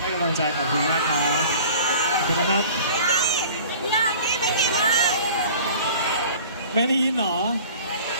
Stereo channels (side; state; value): both; inverted; correlation -0.45